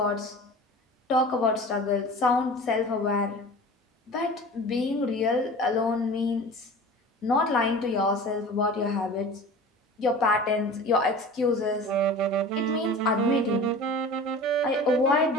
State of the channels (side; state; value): both; normal; correlation 0.38